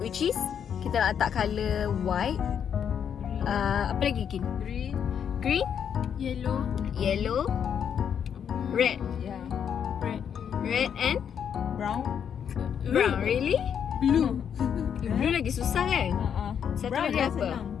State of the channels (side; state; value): right; quieter; 8.1 dB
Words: is kita nak letak colour white. Apa lagi Ikin? Green, yellow, red, red and Brown. brown. Really? Blue. Blue lagi susah kan? Satu Brown lagi dah apa? senang.